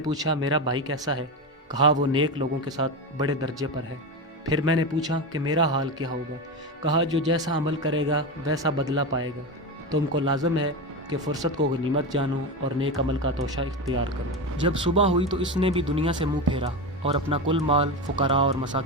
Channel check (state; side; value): normal; both; correlation 0.18